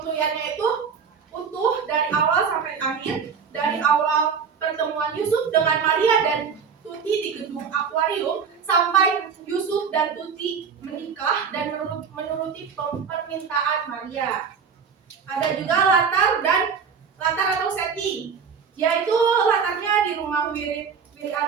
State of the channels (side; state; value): left; quieter; 6.3 dB